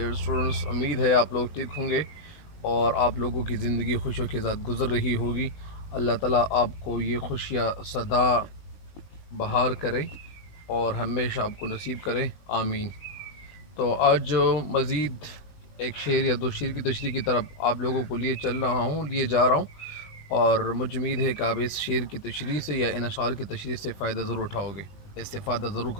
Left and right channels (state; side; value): late; right; 20 ms